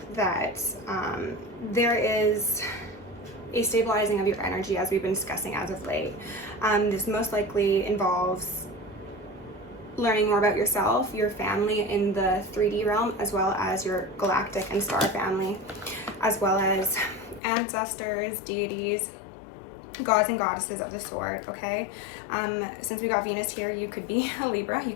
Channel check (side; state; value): right; drops out; at 17.4 s